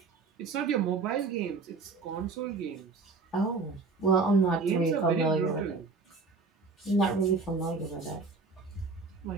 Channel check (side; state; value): left; quieter; 4.2 dB